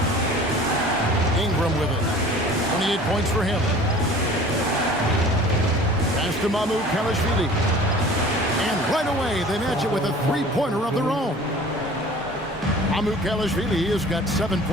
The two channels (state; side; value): normal; both; correlation 0.45